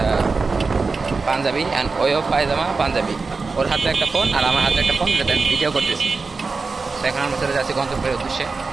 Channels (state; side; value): quieter; left; 4.3 dB